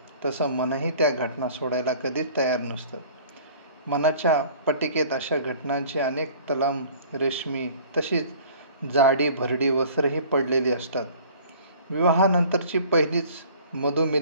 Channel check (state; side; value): inverted; both; correlation -0.49